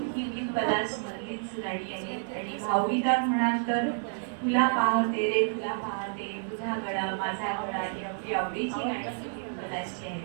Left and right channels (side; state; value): left; silent; 58 dB below the other